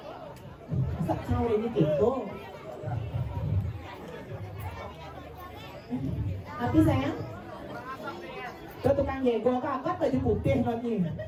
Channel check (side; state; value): both; identical; correlation 1.00